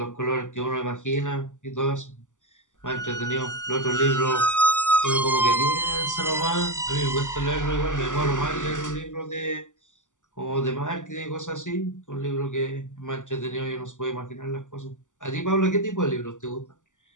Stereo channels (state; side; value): late; right; 0.87 ms